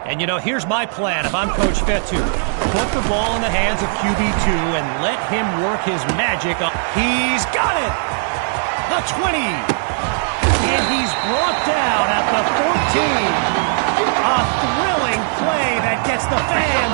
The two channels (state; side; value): silent; left; 67 dB below the other